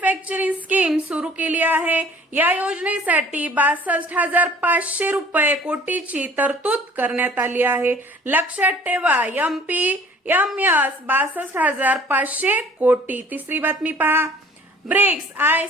स्कीम सुरू केली आहे. या योजनेसाठी 62,500 रुपये कोटीची तरतूद करण्यात आली आहे. लक्षात ठेवा, MPMS 62,500 कोटी. तिसरी बातमी पहा. ब्रिक्स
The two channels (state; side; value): normal; both; correlation 0.51